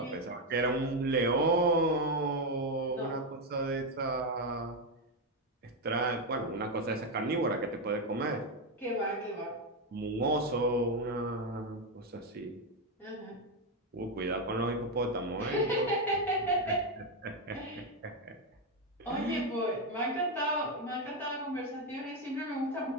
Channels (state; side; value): normal; both; correlation 0.07